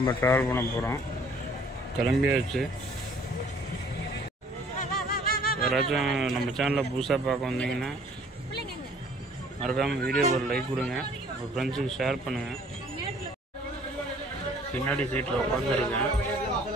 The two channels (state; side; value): normal; both; correlation 0.56